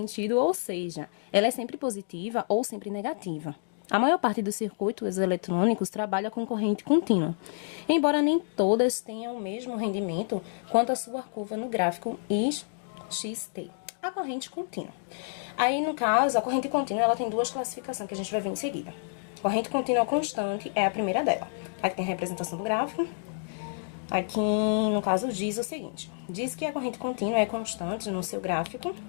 ou seja, ela é sempre positiva ou sempre negativa. A maior parte dos circuitos eletrônicos trabalha com corrente contínua, embora nem todas tenham o mesmo rendimento quanto a sua curva no gráfico XT. A corrente contínua. Aí, no caso, a corrente contínua ela tem duas classificações que a gente vai ver em seguida. Corrente contínua constante é a primeira dela. Aqui tem a representação do gráfico. Aqui, no caso, diz o seguinte. Diz que a corrente contínua é constante no seu gráfico,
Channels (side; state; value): right; silent; digital silence